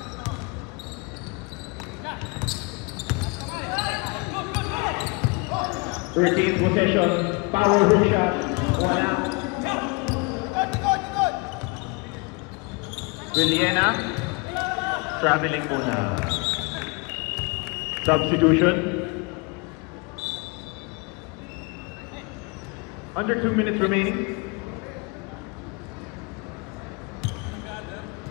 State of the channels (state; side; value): quieter; right; 29.1 dB